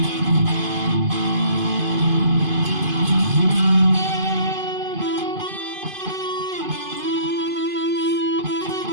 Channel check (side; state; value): left; late; 2.5 ms